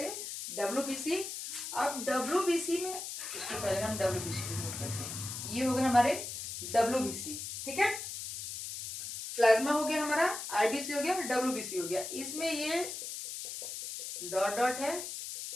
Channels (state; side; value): noise; left; hiss, 7 dB below the sound